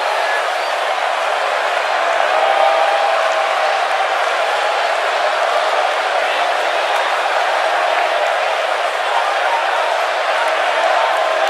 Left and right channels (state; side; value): identical; both; correlation 1.00